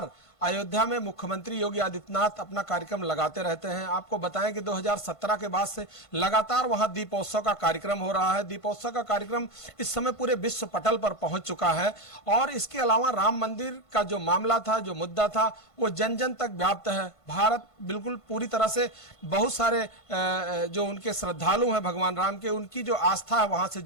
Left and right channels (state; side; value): late; right; 1.5 ms